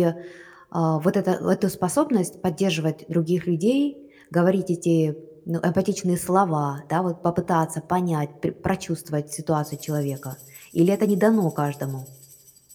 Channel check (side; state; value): both; identical; correlation 1.00